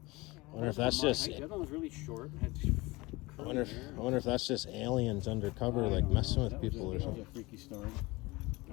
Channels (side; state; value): right; quieter; 22.5 dB